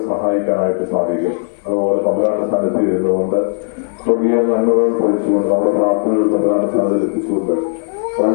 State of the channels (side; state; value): right; silent; 66 dB below the other